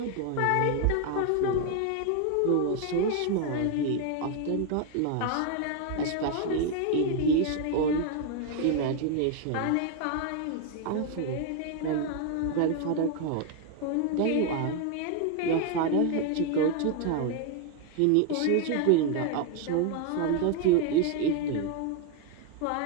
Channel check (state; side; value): different; both; correlation 0.01